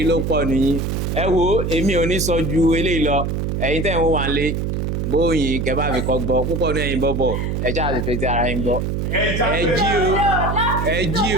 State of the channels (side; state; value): right; noise; hum, 1 dB below the sound